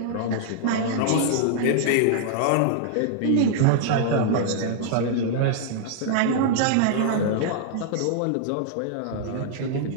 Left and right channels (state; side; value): different; both; correlation -0.01